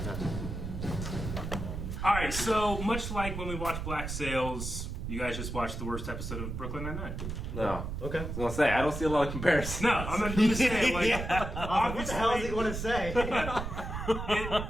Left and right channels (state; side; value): noise; right; rumble, 5 dB below the sound